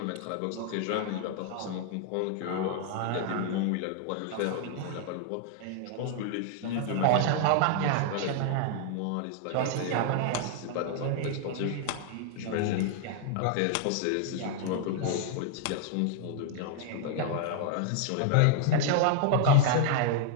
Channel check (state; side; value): different; both; correlation 0.00